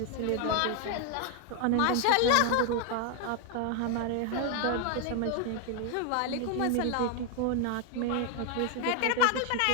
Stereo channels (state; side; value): different; both; correlation 0.01